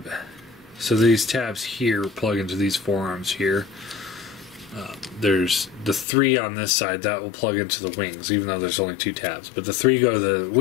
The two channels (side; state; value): right; drops out; at 6.1 s